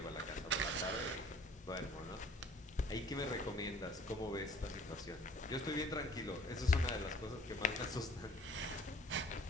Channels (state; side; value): normal; both; correlation 0.52